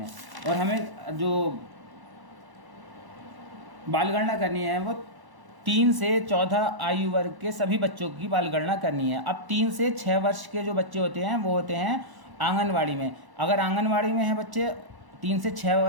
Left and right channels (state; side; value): late; left; 1.1 ms